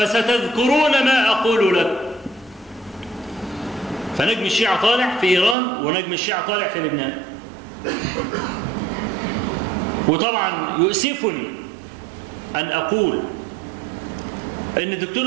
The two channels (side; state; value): left; drops out; at 5.6 s